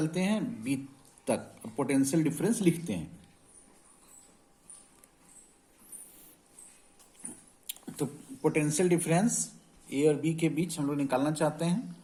हैं बी तक और पोटेंशियल डिफरेंस लिखते हैं। तो पोटेंशियल डिफरेंस ए और बी के बीच हम लोग निकालना चाहते हैं,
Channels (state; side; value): identical; both; correlation 1.00